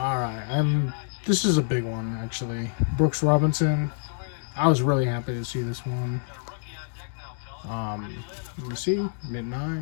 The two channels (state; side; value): silent; right; digital silence